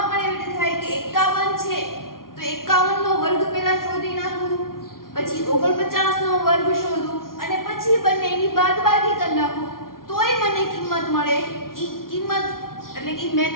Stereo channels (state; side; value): late; right; 0.92 ms